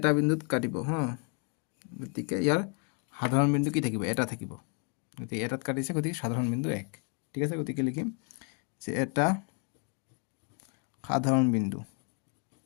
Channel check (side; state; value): right; quieter; 37.4 dB